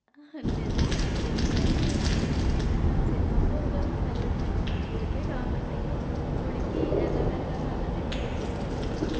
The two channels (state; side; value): identical; both; correlation 1.00